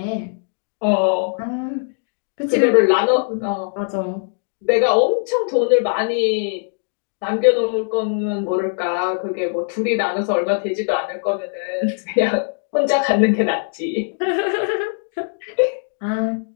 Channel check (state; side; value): silent; right; digital silence